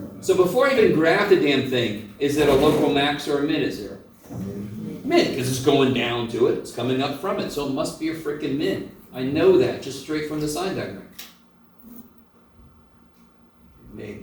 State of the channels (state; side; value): identical; both; correlation 1.00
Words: So before I even graph the damn thing, is it a local max or a min at 0? Min, because it's going down to it. It's coming up from it. So it must be a freaking min. I know that just straight from the sign diagram.